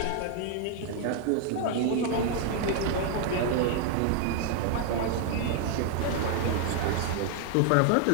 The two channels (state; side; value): different; both; correlation 0.00